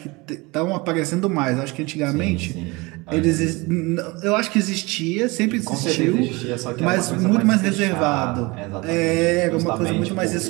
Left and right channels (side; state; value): left; quieter; 24.6 dB